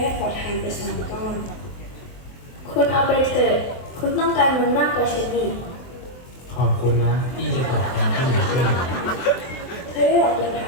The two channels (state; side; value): late; right; 23 ms